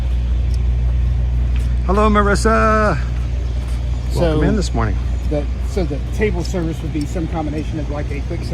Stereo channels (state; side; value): identical; both; correlation 1.00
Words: Hello, Marissa. Welcome in this morning. So the table service would be some combination of like a quick